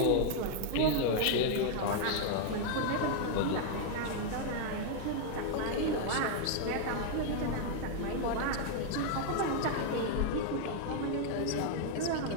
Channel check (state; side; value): different; both; correlation 0.00